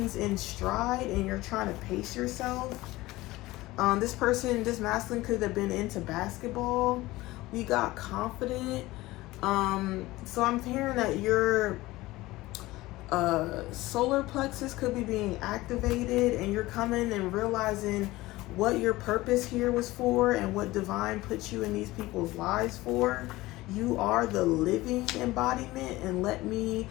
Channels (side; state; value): right; quieter; 18.8 dB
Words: in stride, and you're trying to pace yourself. This person, this masculine, could have been into basketball. We got confident. So I'm hearing that your solar plexus could be being activated, and you're coming and realizing what your purpose here was for and what divine put you in these people's lives for. You are the living embodiment, and let me